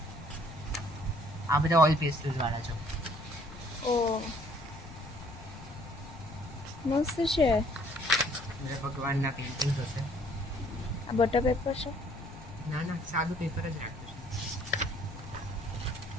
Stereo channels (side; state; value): left; noise; rumble, 15 dB below the sound